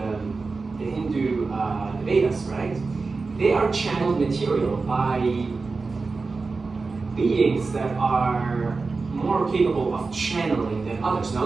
Hindu the Vedas, right? They are channeled material by beings that are more capable of channeling than others. Now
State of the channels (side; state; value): left; quieter; 4.1 dB